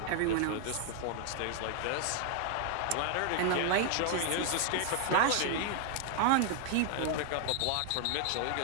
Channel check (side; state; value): both; different; correlation 0.00